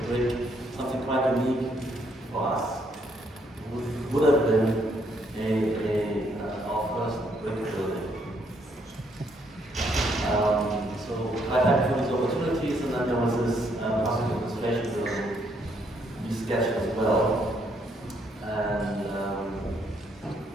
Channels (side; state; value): both; normal; correlation 0.71